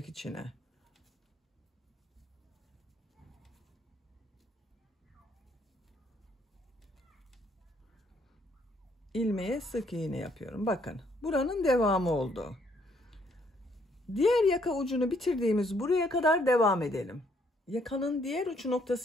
içine. İlmeğe sık iğne yapıyorum. Bakın buranın devamı oldu. Diğer yaka ucunu bitirdiğimiz buraya kadar devam edelim. Yakanın diğer uç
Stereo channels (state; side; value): normal; both; correlation 0.68